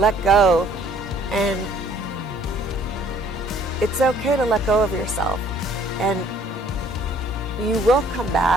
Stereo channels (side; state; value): both; normal; correlation 0.59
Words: go. And it's okay to let go of yourself. And you will come